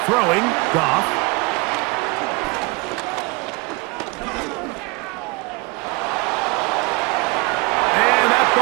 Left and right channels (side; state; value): left; quieter; 26.2 dB